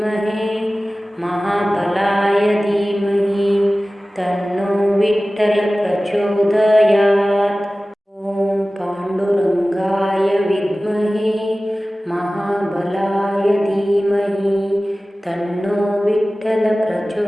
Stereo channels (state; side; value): normal; both; correlation 0.97